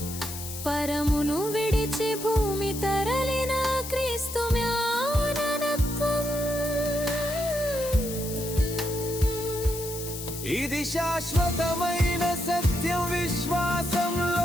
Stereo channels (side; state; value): left; noise; hiss, 9 dB below the sound